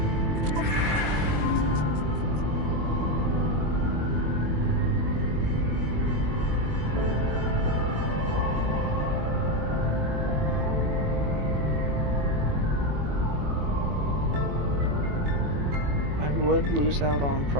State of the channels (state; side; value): late; left; 21 ms